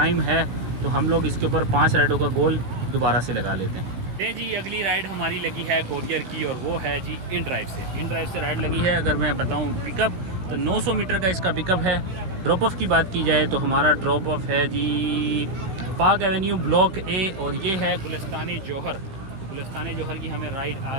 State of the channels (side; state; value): left; late; 16 ms